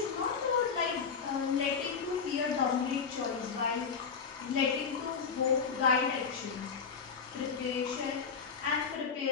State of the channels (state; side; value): quieter; right; 5.8 dB